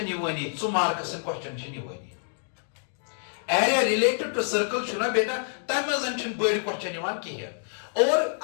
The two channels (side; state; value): right; silent; digital silence